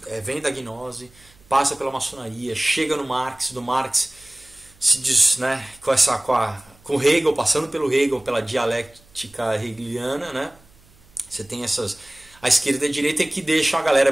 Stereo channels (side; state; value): right; noise; hum, 28 dB below the sound